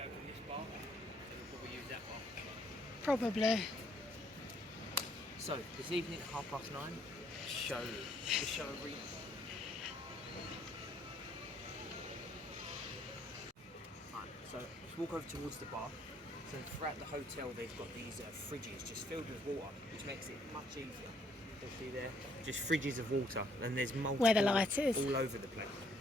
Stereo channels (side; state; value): both; normal; correlation 0.67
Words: open this bar, and we'll probably use that bar. Probably. So, this evening at 9:30, the show arena. Right, so let's walk over towards the bar. So throughout the hotel they've got these fridges just filled with water, which makes it much easier. You'll see there, just fridges of water, and there's multiple Where the light is. all over the place.